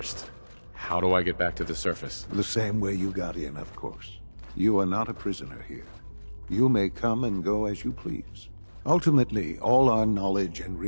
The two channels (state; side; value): inverted; both; correlation -1.00